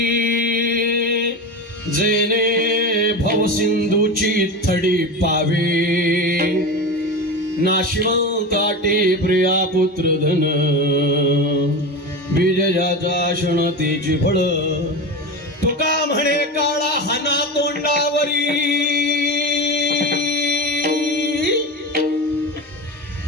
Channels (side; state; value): both; normal; correlation 0.23